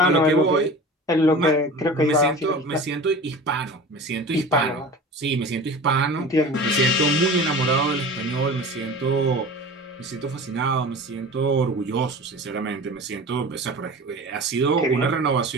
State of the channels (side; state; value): both; normal; correlation 0.37